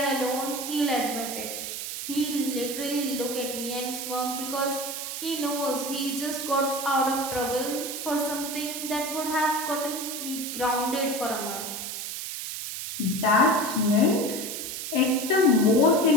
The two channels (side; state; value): right; noise; hiss, 6 dB below the sound